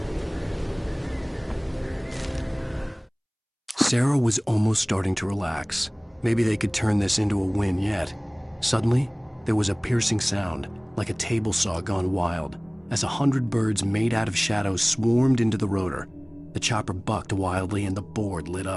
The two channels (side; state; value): both; identical; correlation 1.00